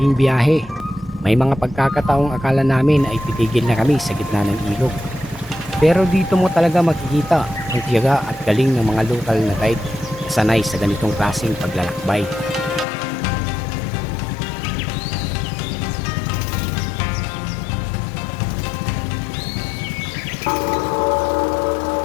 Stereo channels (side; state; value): right; drops out; at 12.9 s